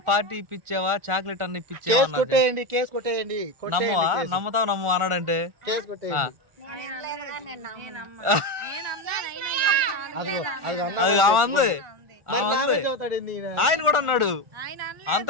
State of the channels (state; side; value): late; left; 1.4 ms